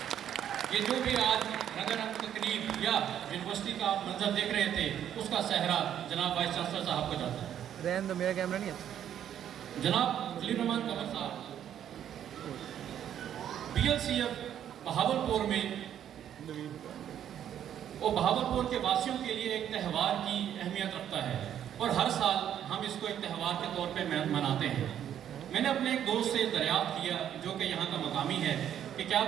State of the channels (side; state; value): left; quieter; 10.1 dB